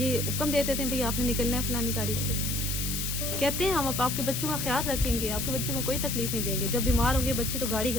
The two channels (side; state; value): left; noise; hiss, 2 dB below the sound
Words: हुक्म दे देते हैं भाई आपने निकलना है फलानी तारीख पे, कहते हैं हम आपके बच्चों का ख्याल रखेंगे, आपके बच्चों को कोई तकलीफ नहीं देंगे। जब बीमार होंगे बच्चे तो गाड़ी